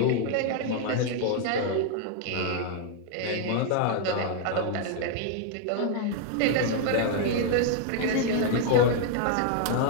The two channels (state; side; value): different; both; correlation 0.00